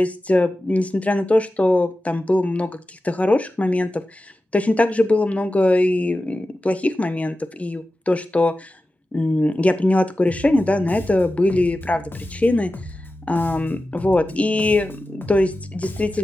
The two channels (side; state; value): both; normal; correlation 0.93